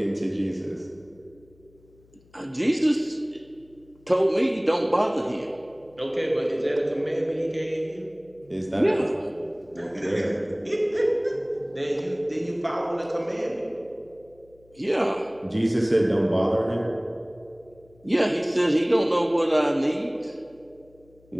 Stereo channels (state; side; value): noise; left; hum, 29 dB below the sound